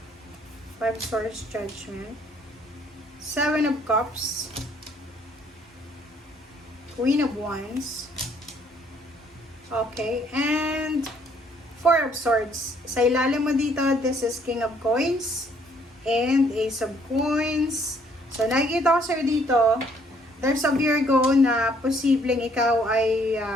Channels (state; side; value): normal; both; correlation 0.64